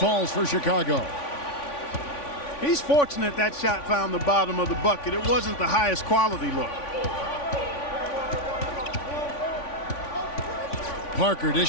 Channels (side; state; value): right; late; 3.5 ms